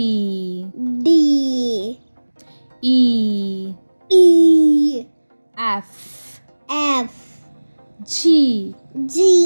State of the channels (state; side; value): inverted; both; correlation -1.00